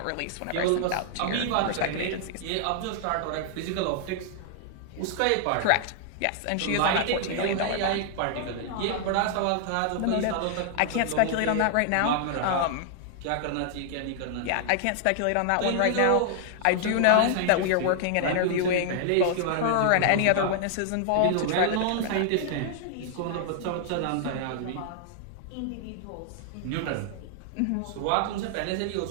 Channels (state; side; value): different; both; correlation -0.01